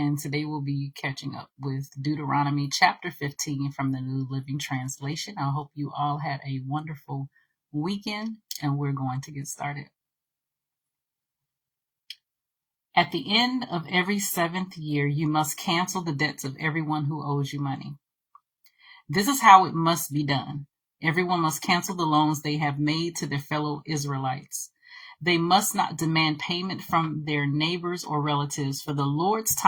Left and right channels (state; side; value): identical; both; correlation 1.00